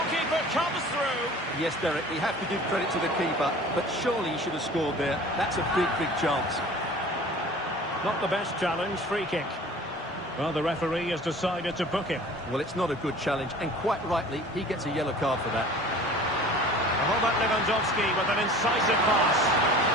comes through. Yes, Derek, we have to give credit to the keeper, but surely he should have scored there. That's a big, big chance. Not the best challenge, free kick. Well, the referee has decided to book him. Well, it's not a good challenge, and quite rightly, he gets a yellow card for that. Robert Lewandowski with an incisive pass.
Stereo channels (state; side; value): normal; both; correlation 0.44